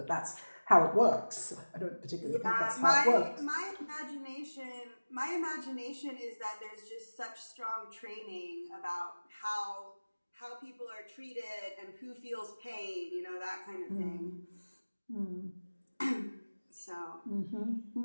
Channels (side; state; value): both; inverted; correlation -1.00